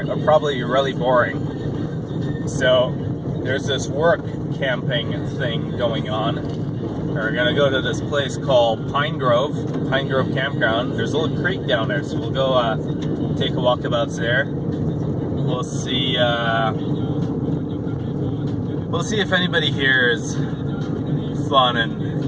or probably really boring. So, there's this work camping thing going on. We're going to go to this place called Pine Grove Campground. There's a little creek down there, so we'll go take a walkabout there. We'll see if anybody here is fun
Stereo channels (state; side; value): identical; both; correlation 1.00